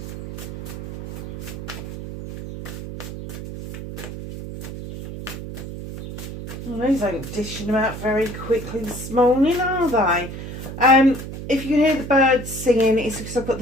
Well, these ain't dishing them out very quickly this morning, are they? If you can hear the birds singing, it's because I've got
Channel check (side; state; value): right; noise; hum, 9 dB below the sound